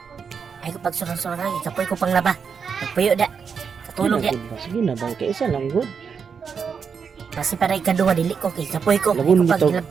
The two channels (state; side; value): quieter; left; 6.3 dB